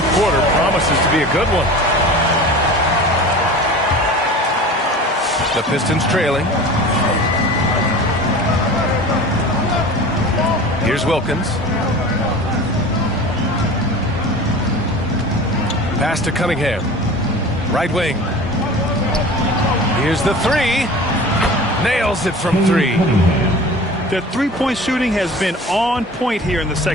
quarter promises to be a good one. The Pistons trailing. Here's Wilkins. Pass to Cunningham. Right wing. Here's the 3. Nails it from 3. The three-point shooting has been on point here in the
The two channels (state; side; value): normal; both; correlation 0.38